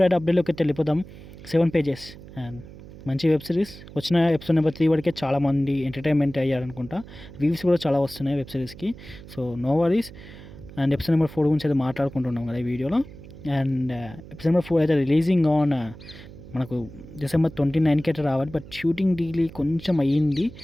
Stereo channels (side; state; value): right; noise; hum, 17 dB below the sound